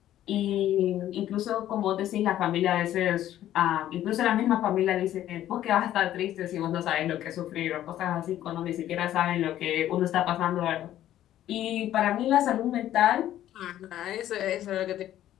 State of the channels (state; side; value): quieter; right; 12.5 dB